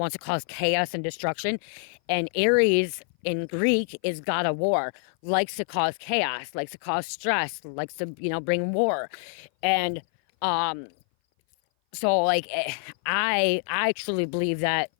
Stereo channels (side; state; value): right; silent; 58 dB below the other